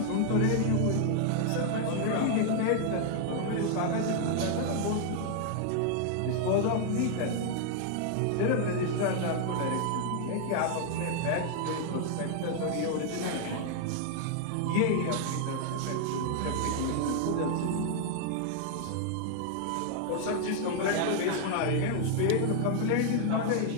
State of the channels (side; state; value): both; different; correlation 0.00